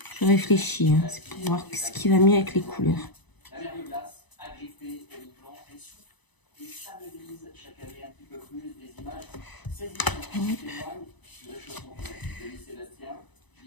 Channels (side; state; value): right; late; 1.0 ms